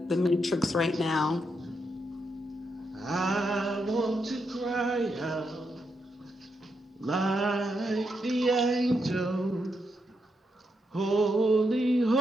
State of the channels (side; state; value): both; normal; correlation 0.82